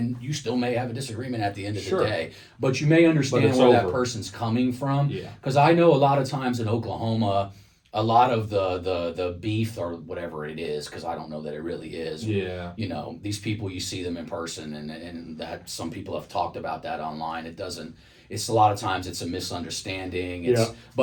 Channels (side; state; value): both; identical; correlation 1.00